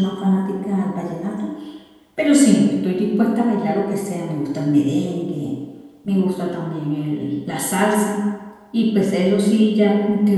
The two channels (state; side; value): identical; both; correlation 1.00